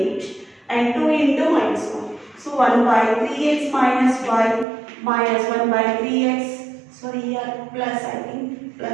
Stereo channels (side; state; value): left; drops out; at 4.7 s